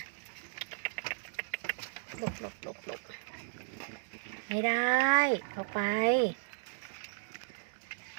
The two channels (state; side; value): silent; left; digital silence